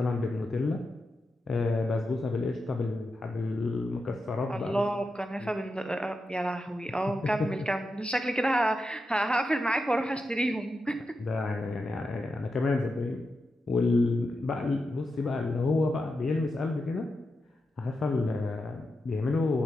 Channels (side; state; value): both; normal; correlation 0.88